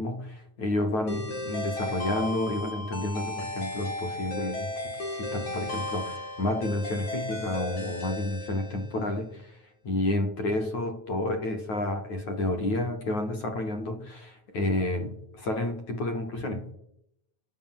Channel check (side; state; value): right; late; 9.3 ms